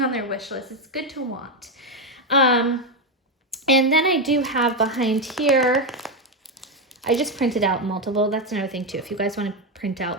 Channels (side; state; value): both; normal; correlation 0.08